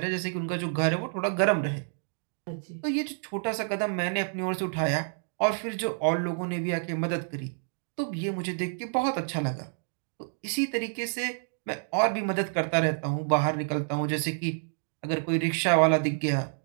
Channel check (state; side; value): silent; left; digital silence